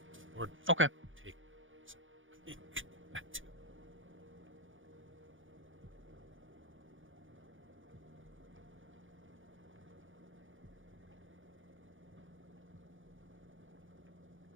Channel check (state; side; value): late; left; 0.57 ms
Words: or Okay. take that too.